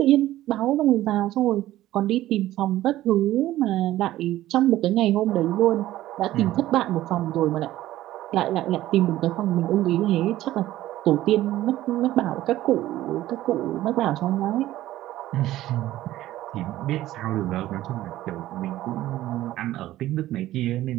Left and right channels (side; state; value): left; quieter; 14.8 dB